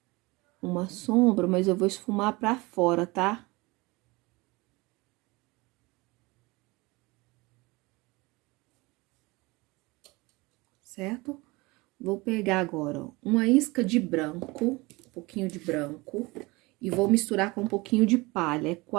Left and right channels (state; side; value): quieter; left; 23.7 dB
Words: uma sombra, mas eu vou esfumar pra fora, tá? Certo? Vou pegar agora, ó, uma isca de branco, um pouquinho de branco, e vou misturar com um pouquinho de palha. É